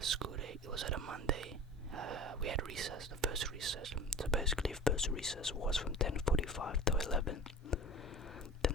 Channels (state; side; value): normal; both; correlation 0.38